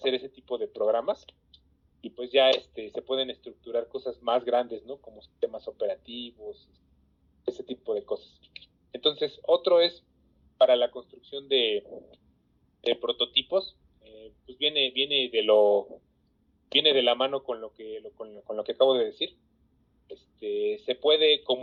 ese tipo de programas, y pues ya se pueden estructurar cosas más grandes, ¿no? Como sistemas operativos, ese tipo de cosas. Entonces, otro es para la construcción de prototipos, pues viene de la mano con lo que acabo de decir. Se puede,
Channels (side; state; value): both; identical; correlation 1.00